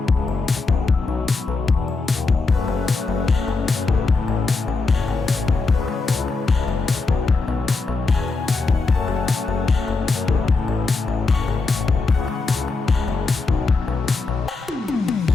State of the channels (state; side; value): quieter; right; 3.8 dB